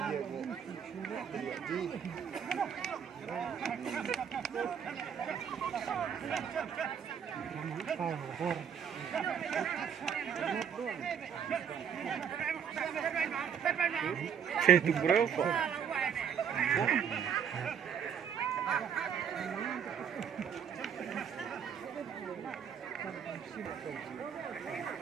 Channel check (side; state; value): left; quieter; 7.9 dB